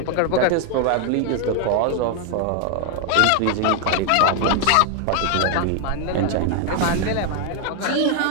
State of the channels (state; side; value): different; both; correlation 0.01